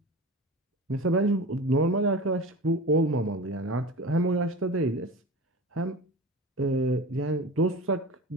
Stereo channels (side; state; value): both; normal; correlation 0.32